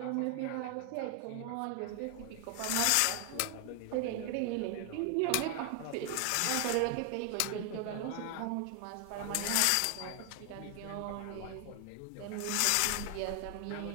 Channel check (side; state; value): both; different; correlation 0.00